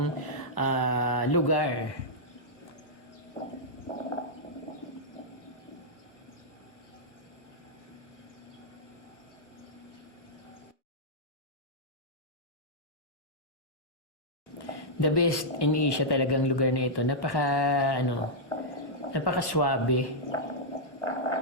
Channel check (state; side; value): late; right; 1.1 ms